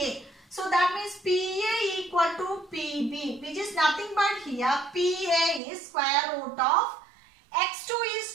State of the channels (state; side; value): drops out; left; at 5.6 s